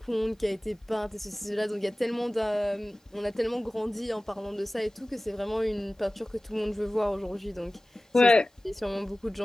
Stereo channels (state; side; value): normal; both; correlation 0.97